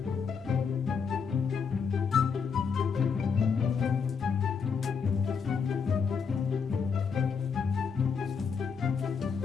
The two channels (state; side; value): quieter; right; 6.0 dB